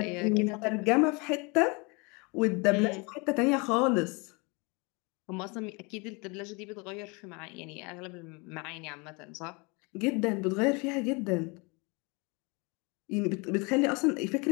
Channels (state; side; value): quieter; right; 29.3 dB